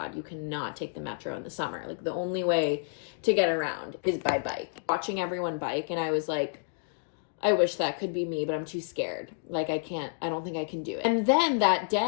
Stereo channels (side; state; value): right; silent; digital silence